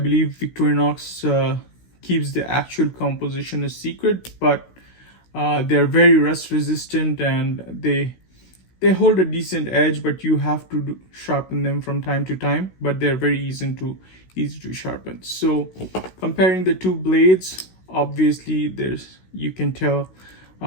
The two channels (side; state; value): right; late; 16 ms